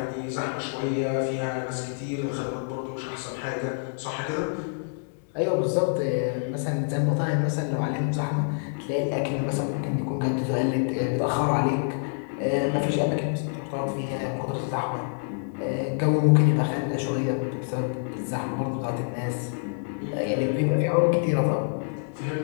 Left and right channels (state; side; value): silent; right; digital silence